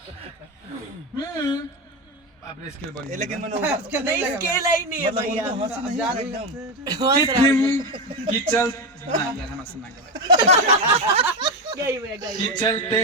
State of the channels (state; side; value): normal; both; correlation 0.14